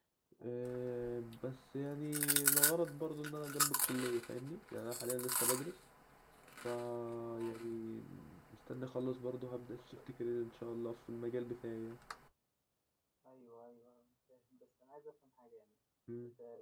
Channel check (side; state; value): both; identical; correlation 1.00